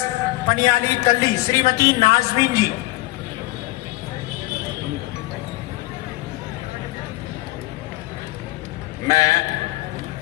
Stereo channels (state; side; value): quieter; right; 19.5 dB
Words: पनियाली तल्ली, श्रीमती नाजमीन जी। मैं